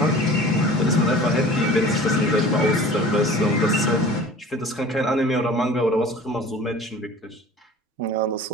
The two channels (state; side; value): normal; both; correlation 0.43